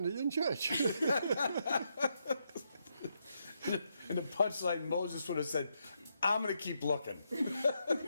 in church? And the punchline, Moses would have said, I'm going to keep looking.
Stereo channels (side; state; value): both; inverted; correlation -0.80